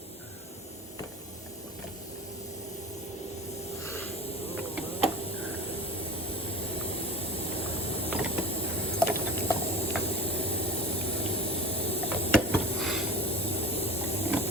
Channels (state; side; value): normal; both; correlation 0.36